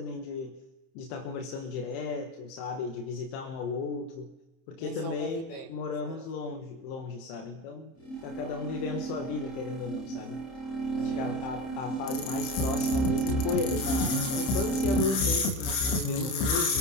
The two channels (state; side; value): late; right; 31 ms